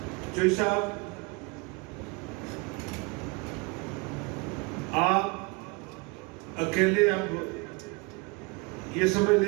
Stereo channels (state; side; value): quieter; left; 28.6 dB